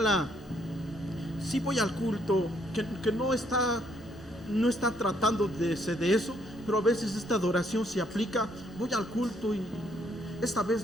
sí voy al culto, que no está tratando de eso, pero a veces esta adoración se aplica. Voy al culto y esta vez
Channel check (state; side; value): normal; both; correlation 0.69